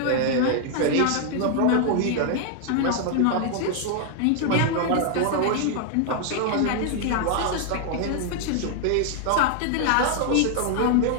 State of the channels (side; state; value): both; different; correlation 0.00